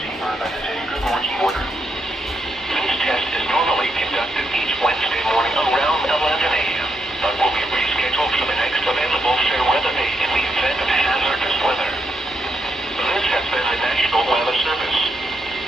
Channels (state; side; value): normal; both; correlation 0.80